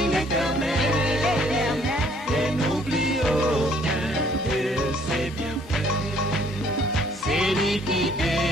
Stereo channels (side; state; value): both; normal; correlation 0.62